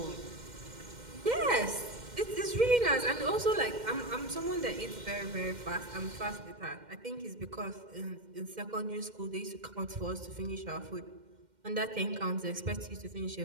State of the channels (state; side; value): late; left; 2.1 ms